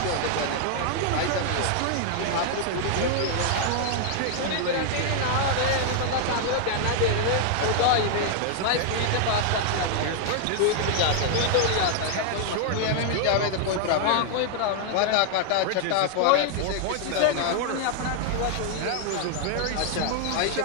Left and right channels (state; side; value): different; both; correlation 0.00